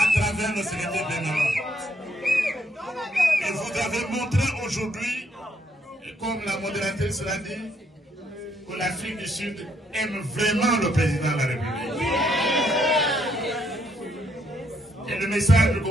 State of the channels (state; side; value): normal; both; correlation 0.72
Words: travers le secrétaire général. Et vous avez montré aujourd'hui, comme la modératrice l'a dit, que l'Afrique du Sud aime vraiment le président de la République. Et le message que